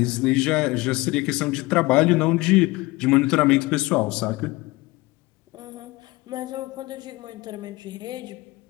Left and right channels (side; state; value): right; quieter; 21.5 dB